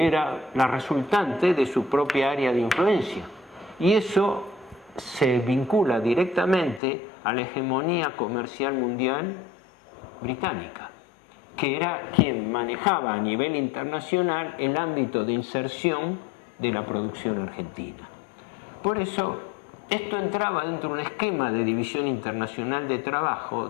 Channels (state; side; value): drops out; right; at 6.8 s